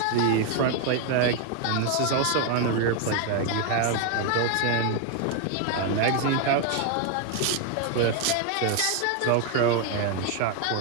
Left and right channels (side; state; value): both; different; correlation 0.01